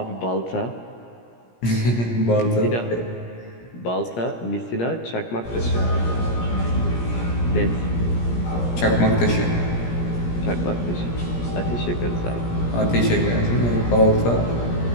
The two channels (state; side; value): late; right; 17 ms